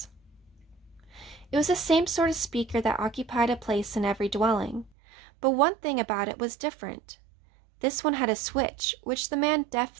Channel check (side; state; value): left; drops out; at 4.9 s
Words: It was the same sort of speaker that occupied a place in every dwelling, but one thing about it was different. This one had a switch, which the man